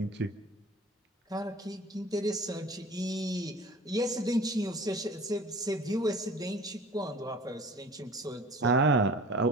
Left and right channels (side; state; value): both; normal; correlation 0.44